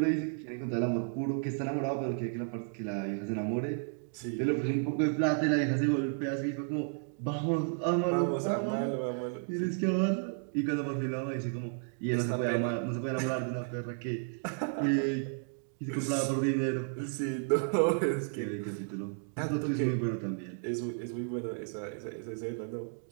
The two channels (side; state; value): left; silent; 56 dB below the other